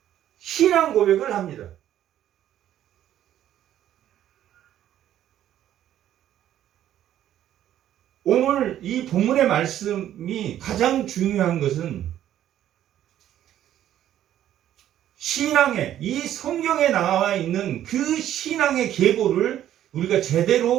신앙 고백을 합니다. 오늘 이 본문의 말씀이 가장 중요한 것은 신앙의, 이 성경에 나와 있는 그 신앙의 계보를 우리가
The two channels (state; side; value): quieter; left; 11.6 dB